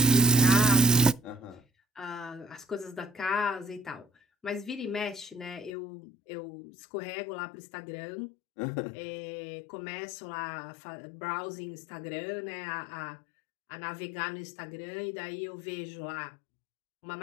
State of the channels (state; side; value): drops out; right; at 5.7 s